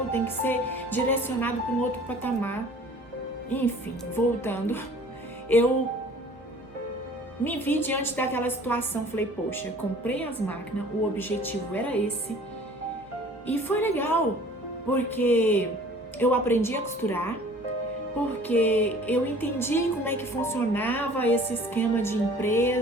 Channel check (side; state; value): both; normal; correlation 0.49